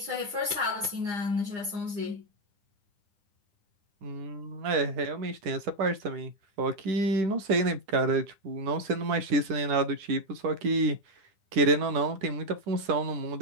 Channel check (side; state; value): left; late; 9.9 ms